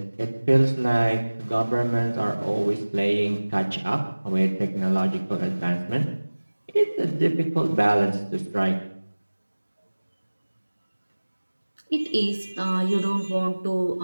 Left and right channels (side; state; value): both; inverted; correlation -1.00